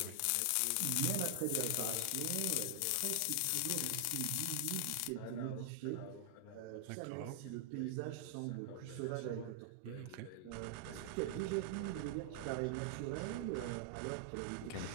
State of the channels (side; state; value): both; different; correlation 0.00